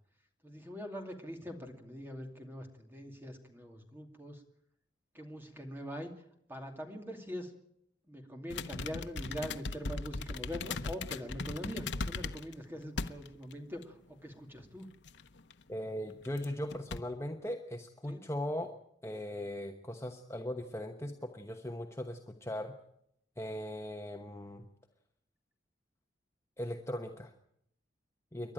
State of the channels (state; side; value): normal; both; correlation 0.76